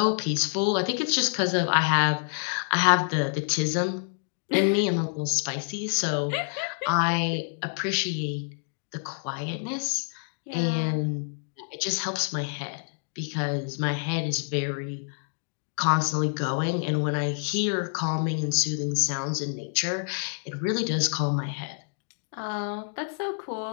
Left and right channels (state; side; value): silent; right; digital silence